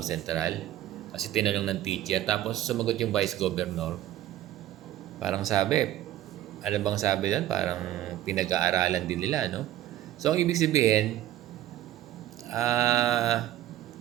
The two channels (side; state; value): left; quieter; 13.3 dB